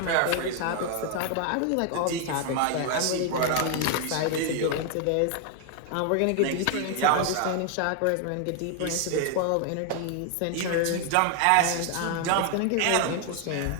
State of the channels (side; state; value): both; different; correlation 0.00